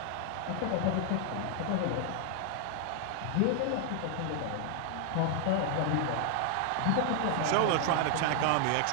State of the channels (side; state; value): both; different; correlation 0.00